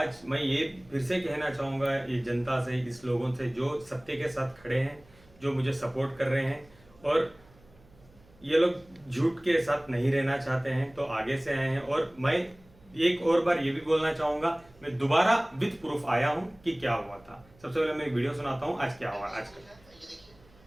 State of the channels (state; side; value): noise; right; hum, 28 dB below the sound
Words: मैं ये फिर से कहना चाहूँगा ये जनता से, इस लोगों से जो सत्य के साथ खड़े हैं, जो मुझे सपोर्ट कर रहे हैं, और ये लोग झूठ के साथ नहीं रहना चाहते हैं तो आगे से आए हैं। और मैं एक और बार ये भी बोलना चाहूँगा, मैं दोबारा विद प्रूफ आया हूँ कि क्या हुआ था। सबसे पहले मैं एक वीडियो सुनाता हूँ आज क्या हुआ। आज का ये देखिए,